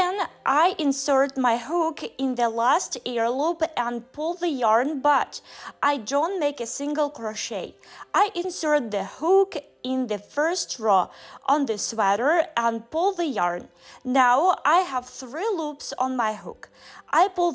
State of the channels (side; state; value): both; identical; correlation 1.00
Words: I insert my hook in the last air loop and pull the yarn, but I don't make a single crochet. I insert the hook in the first row on the sweater and pull the yarn. Now I have 3 loops on my hook. I pull